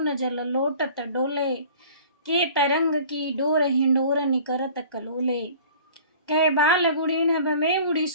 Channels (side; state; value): both; inverted; correlation -0.46